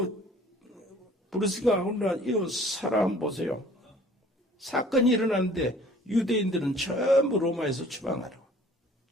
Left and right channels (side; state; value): both; normal; correlation 0.52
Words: 브루스가 오늘 이 사람 보세요. 사건이 일어났는데 유대인들은 전부 로마에서